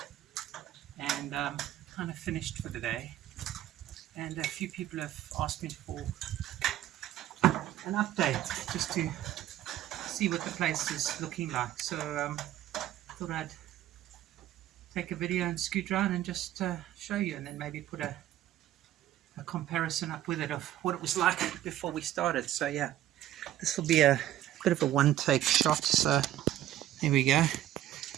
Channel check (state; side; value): quieter; left; 12.9 dB